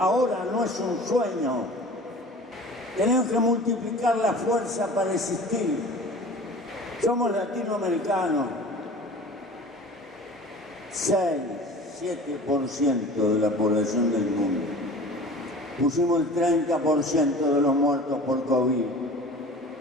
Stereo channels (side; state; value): both; normal; correlation 0.41